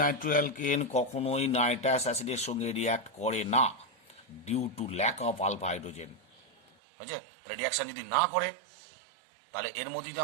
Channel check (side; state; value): left; drops out; at 6.7 s